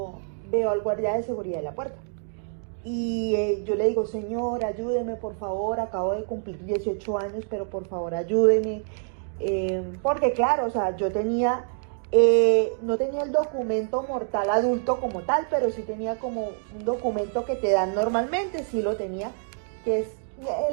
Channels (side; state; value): left; silent; 61 dB below the other